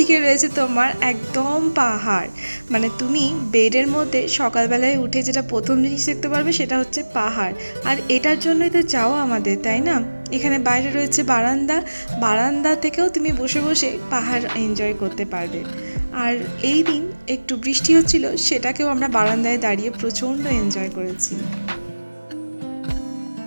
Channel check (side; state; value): both; inverted; correlation -1.00